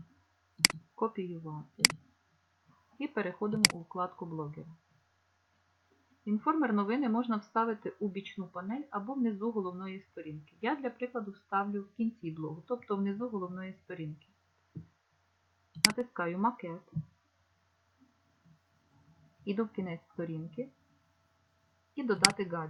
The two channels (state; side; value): identical; both; correlation 1.00